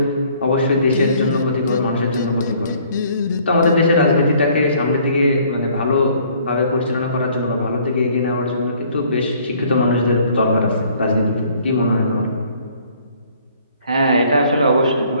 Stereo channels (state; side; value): inverted; both; correlation -0.59